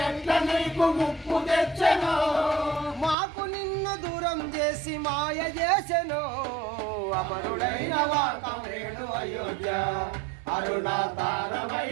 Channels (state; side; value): drops out; left; at 3.2 s